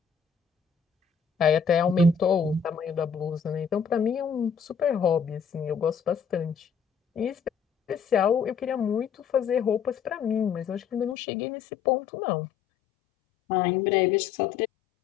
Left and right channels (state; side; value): drops out; right; at 11.2 s